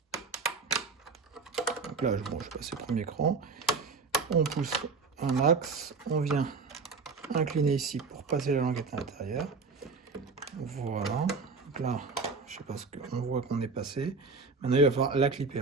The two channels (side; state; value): left; quieter; 4.6 dB